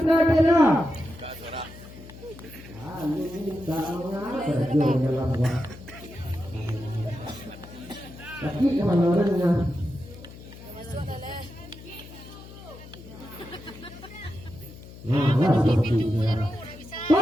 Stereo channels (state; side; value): noise; left; hum, 17 dB below the sound